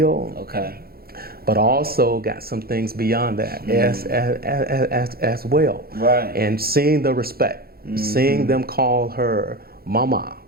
Okay. But also got some things beyond that as well. Right. And seeing the respect, seeing them call her mama,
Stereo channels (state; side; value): late; left; 0.44 ms